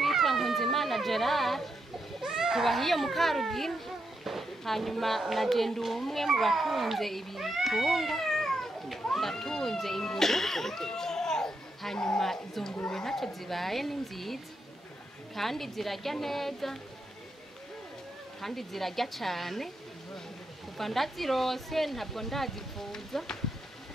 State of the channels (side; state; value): both; normal; correlation 0.83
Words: Nkunzimana Gerard, tubahiye mu Karugina. Hanyuma naje ndi umwe mu batunze ibitungwa, ndatunze ingurube. Hanyuma izo ngurube ntacyo zibaye, ni nziza kandi zirarya neza kandi zirarya cyane. Kuva ndazirose ntabwo ndazivuza,